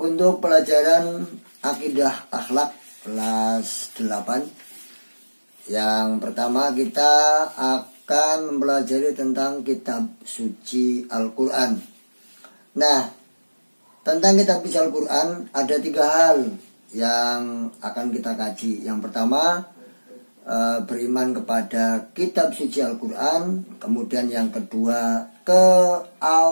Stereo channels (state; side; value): inverted; both; correlation -1.00